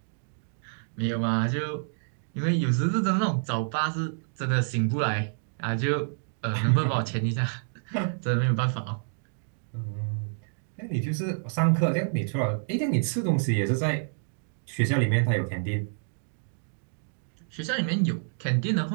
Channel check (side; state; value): left; silent; digital silence